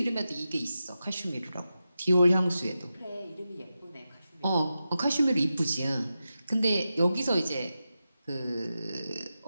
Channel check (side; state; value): both; inverted; correlation -0.91